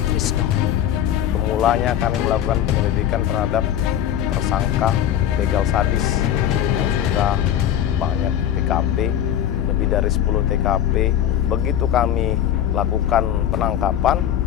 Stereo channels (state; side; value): quieter; right; 10.7 dB